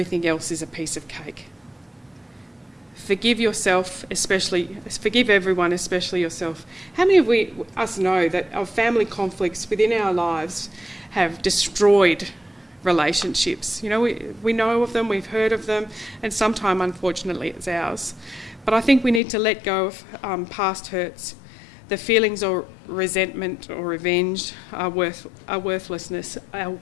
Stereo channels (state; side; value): drops out; right; at 19.2 s